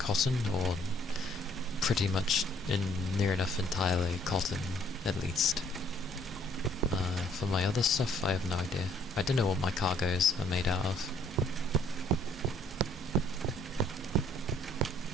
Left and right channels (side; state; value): both; normal; correlation 0.63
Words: or pretty much near enough entirely cotton, at least. For my other stuff, I have no idea. I don't know what my cargoes are made out of.